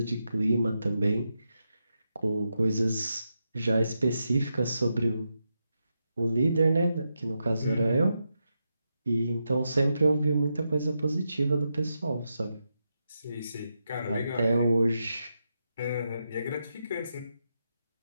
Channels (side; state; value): both; inverted; correlation -0.86